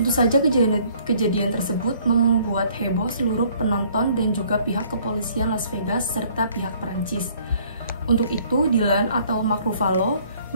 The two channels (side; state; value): both; inverted; correlation -0.59